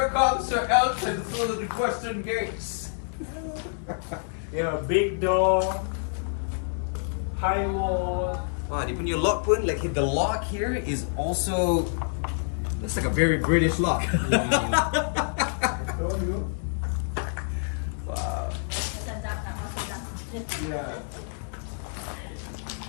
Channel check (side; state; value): right; silent; digital silence